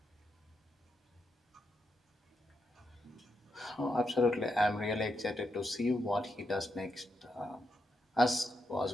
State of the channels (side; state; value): both; normal; correlation 0.83